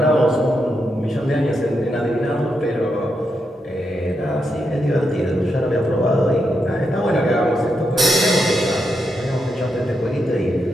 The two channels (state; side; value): normal; both; correlation 0.83